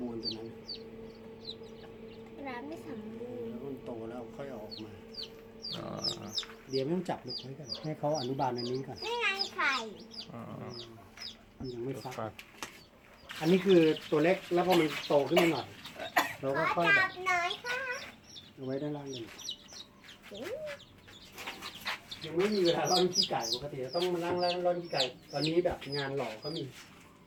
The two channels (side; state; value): both; identical; correlation 1.00